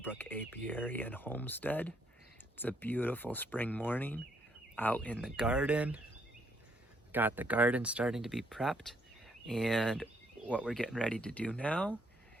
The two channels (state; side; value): normal; both; correlation 0.72